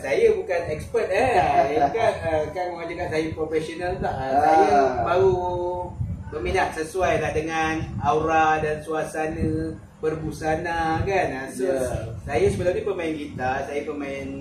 bukan expert kan orang cakap saya profesional tak. Saya baru berminat sesuai lah dengan aura dan suasana berbusana kan. So saya sebelum ni pemain gitar, saya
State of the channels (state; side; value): identical; both; correlation 1.00